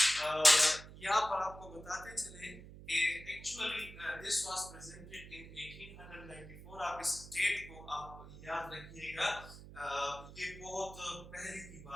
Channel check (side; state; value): right; noise; hum, 15 dB below the sound